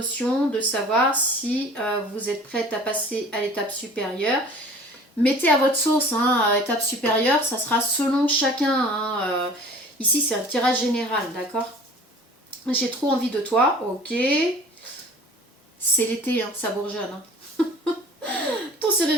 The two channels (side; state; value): both; normal; correlation 0.46